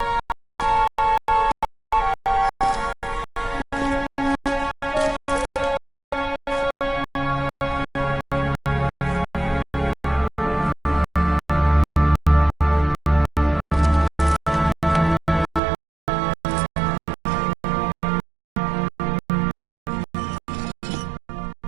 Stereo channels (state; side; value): drops out; left; at 15.6 s